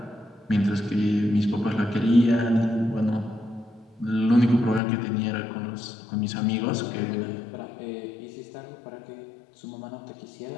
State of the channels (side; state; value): right; drops out; at 4.8 s